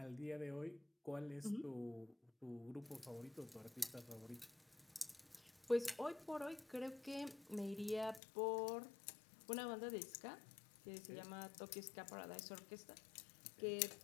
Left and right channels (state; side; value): drops out; right; at 8.2 s